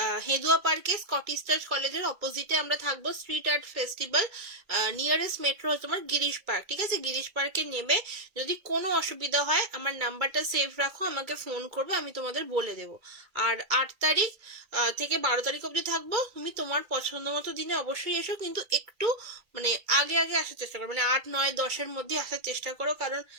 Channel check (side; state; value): left; late; 2.3 ms